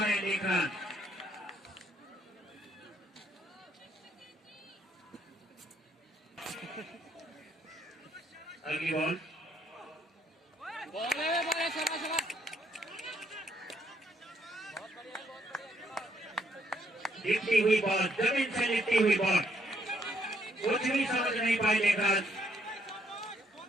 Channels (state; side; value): normal; both; correlation 0.71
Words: देख रन। अगली बॉल, लिपटी हुई बॉल, जमीन से लिपटी हुई बॉल, कुछ भी समझ नहीं पाए लेकर।